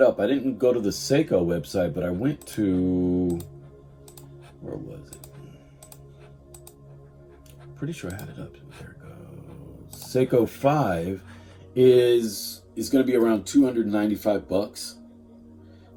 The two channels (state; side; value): identical; both; correlation 1.00